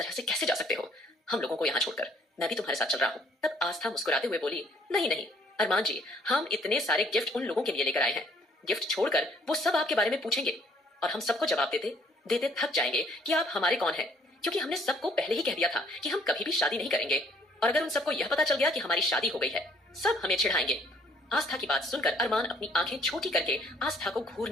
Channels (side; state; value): both; normal; correlation 0.62